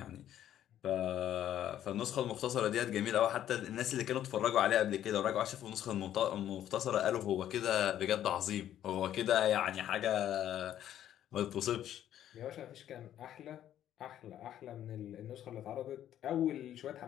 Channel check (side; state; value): right; quieter; 11.3 dB